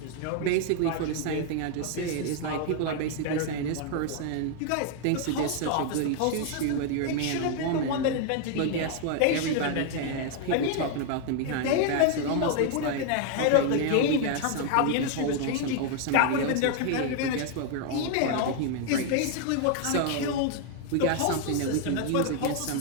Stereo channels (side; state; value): both; different; correlation 0.00